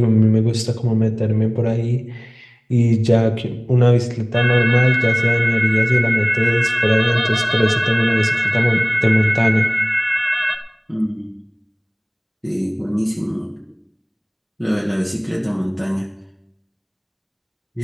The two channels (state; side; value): identical; both; correlation 1.00